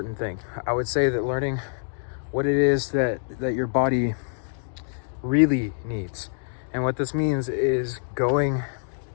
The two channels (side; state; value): right; silent; digital silence